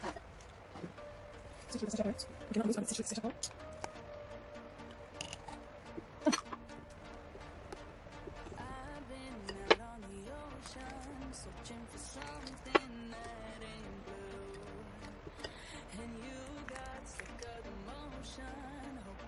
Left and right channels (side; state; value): both; identical; correlation 1.00